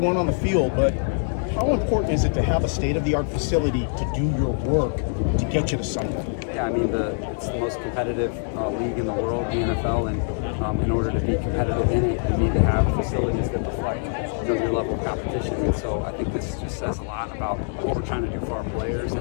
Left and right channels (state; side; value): silent; right; 62 dB below the other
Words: on the field, but how important is it to have a state-of-the-art facility to do your work to get you to something? Yeah, I mean, it's the most competitive league in the world, the NFL, and in order to be competitive in it, you need to have facilities that reflect your level of competition. And so I think this just says a lot about what we're trying to do for our players. And